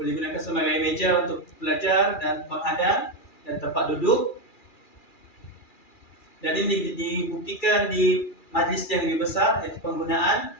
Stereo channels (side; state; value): right; late; 2.4 ms